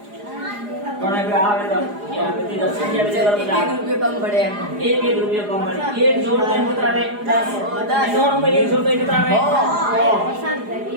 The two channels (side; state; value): left; late; 4.9 ms